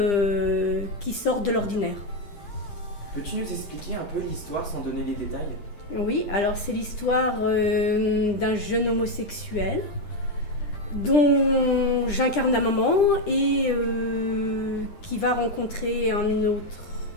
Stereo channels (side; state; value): right; late; 9.9 ms